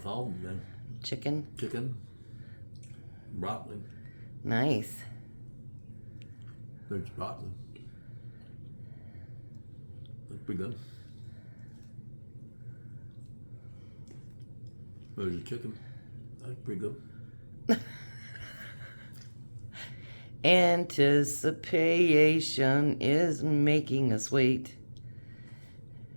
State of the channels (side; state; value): both; inverted; correlation -1.00